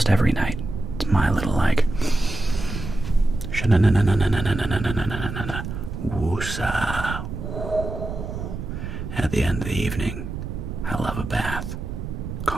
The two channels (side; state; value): right; noise; rumble, 7 dB below the sound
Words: every night. It's my little like woosah. At the end of the evening, I love a bath.